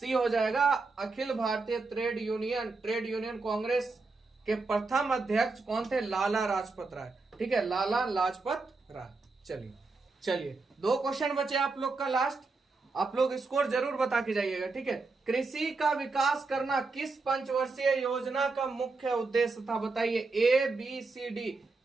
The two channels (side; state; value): left; quieter; 3.9 dB